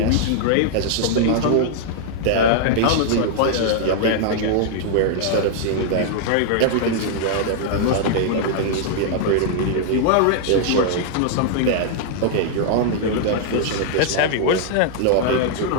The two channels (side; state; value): both; different; correlation -0.01